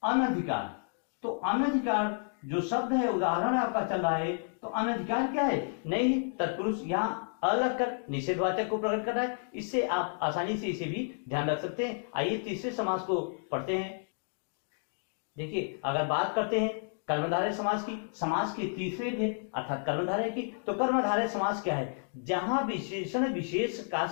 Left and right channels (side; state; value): right; silent; digital silence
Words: अनधिकार, तो अनधिकार जो शब्द है, उदाहरण आपका चल रहा है, तो अनधिकार क्या है? नई तत्पुरुष, यहाँ अलग कर निषेधवाचक को प्रकट कर रहा है। इससे आप आसानी से इसे भी ध्यान रख सकते हैं। आइए तीसरे समास को पढ़ते हैं। देखिए, अगर बात करते हैं कर्मधारय समास की, समास के तीसरे भेद अर्थात कर्मधारय की, तो कर्मधारय समास क्या है? जहां विशेषण विशेष का